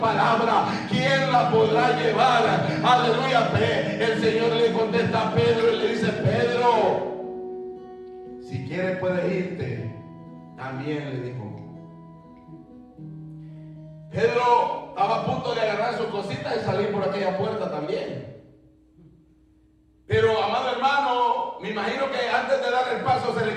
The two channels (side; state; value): both; identical; correlation 1.00